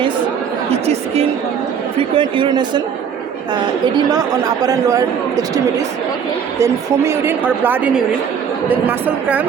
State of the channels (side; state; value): left; quieter; 7.5 dB